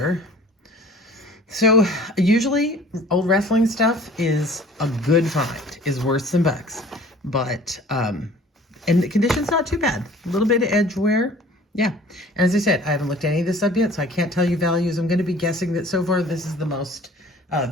So usually old wrestling stuff is a good find, is worth some bucks. But, and the condition's not too bad. A little bit of edge wear. Yeah, and as I said, I haven't looked at any of this up yet, so I can't tell you values. I'm going to be guessing that so far this is the most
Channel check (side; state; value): both; normal; correlation 0.49